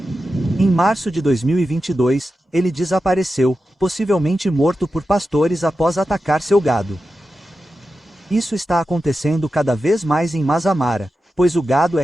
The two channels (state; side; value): normal; both; correlation 0.91